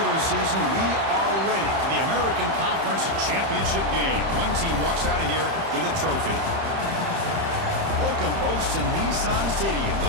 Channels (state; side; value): late; left; 31 ms